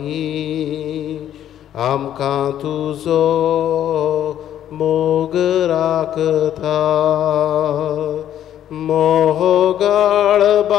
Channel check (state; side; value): quieter; right; 10.9 dB